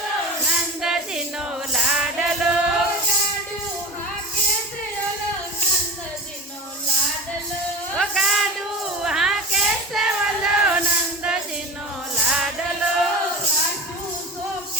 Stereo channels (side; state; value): both; normal; correlation 0.31